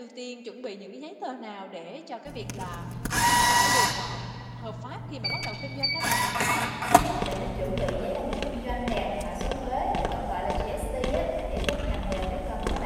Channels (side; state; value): both; identical; correlation 1.00